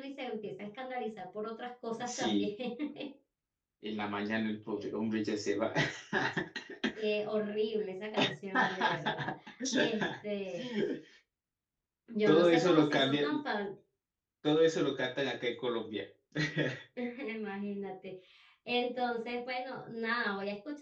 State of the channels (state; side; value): identical; both; correlation 1.00